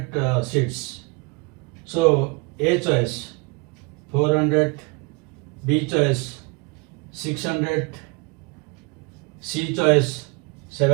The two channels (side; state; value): left; quieter; 29.8 dB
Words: seeds? So A choice 400, B choice 600, C choice